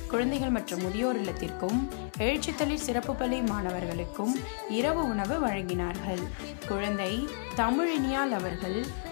குழந்தைகள் மற்றும் முதியோர் இல்லத்திற்கும் எழுச்சித்தளிர் சிறப்பு பள்ளி மாணவர்களுக்கும் இரவு உணவு வழங்கினார்கள். குழந்தை தமிழ் இனியால் அவர்கள்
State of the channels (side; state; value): right; silent; 57 dB below the other